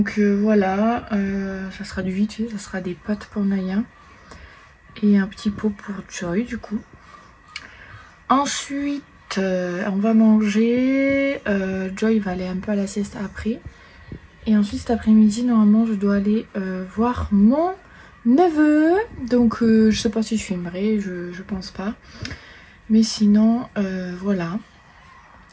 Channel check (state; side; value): identical; both; correlation 1.00